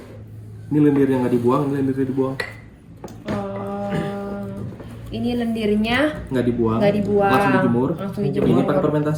Ini lendir yang nggak dibuang, ini lendirnya dibuang. Ini lendirnya Nggak dibuang. Nggak dibuang. Langsung dijemur. Langsung dijemur. Ini pakai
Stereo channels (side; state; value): both; identical; correlation 1.00